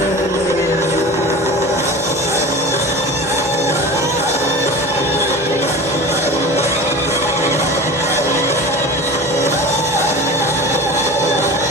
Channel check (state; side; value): normal; both; correlation 0.34